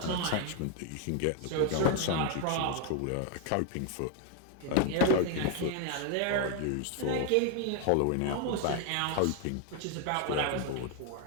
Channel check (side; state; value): both; different; correlation 0.00